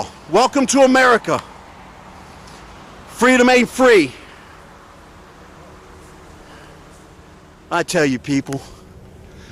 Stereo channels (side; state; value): both; identical; correlation 1.00